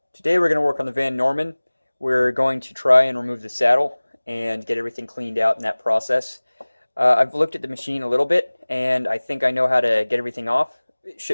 Today we're going to work on the Van Norman. We're going to try and remove the saddle and get everything cleaned out in that process. I've looked at the machine a little bit and I think I know how to get everything off. It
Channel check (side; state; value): both; inverted; correlation -1.00